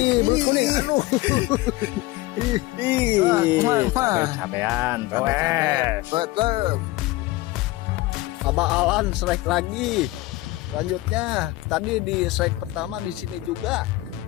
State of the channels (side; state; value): right; quieter; 18.8 dB